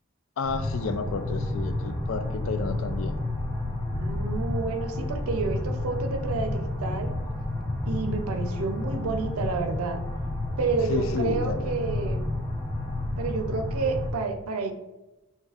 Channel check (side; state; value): both; normal; correlation 0.48